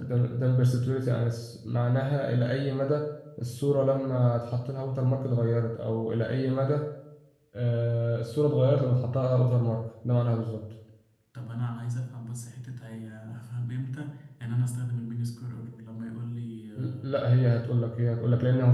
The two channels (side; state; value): both; identical; correlation 1.00